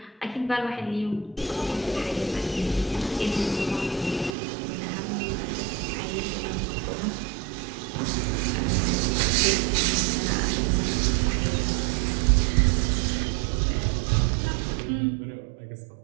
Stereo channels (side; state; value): left; drops out; at 4.4 s